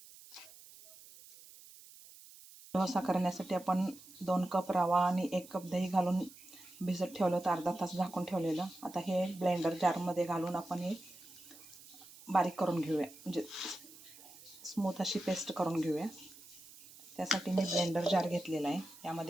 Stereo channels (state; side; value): noise; right; hiss, 20 dB below the sound